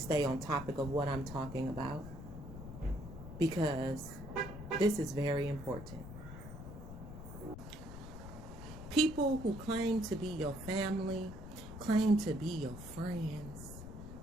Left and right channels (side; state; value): left; noise; rumble, 11 dB below the sound